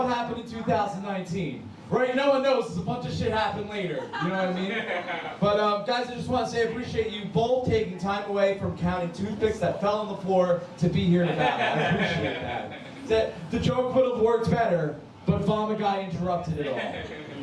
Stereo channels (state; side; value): identical; both; correlation 1.00